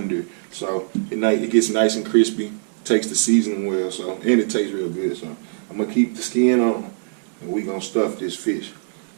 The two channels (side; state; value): left; silent; digital silence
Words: so it gets nice and crispy. Takes the seasoning well, so, and it tastes real good. So I'm gonna keep the skin on, and we gonna stuff this fish.